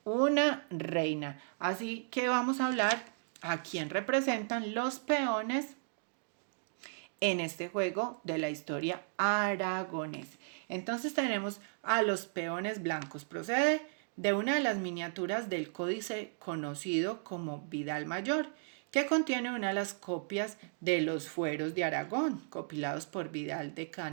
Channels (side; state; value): left; silent; digital silence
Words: una reina. Así que vamos a hablar a quién representan los peones en este juego de la historia aragonés. Entonces tenemos a los peones blancos. Procede de una de las miniaturas del códice conocido como Vidal Mayor, que contiene una de las copias de los fueros de Aragón, compilados por Vidal de